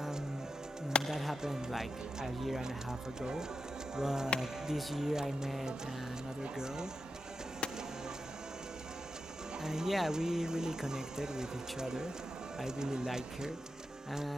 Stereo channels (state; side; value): normal; both; correlation 0.89